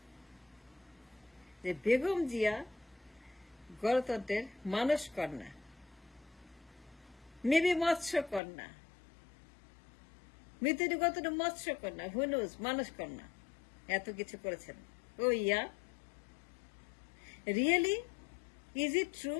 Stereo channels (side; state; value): right; drops out; at 8.4 s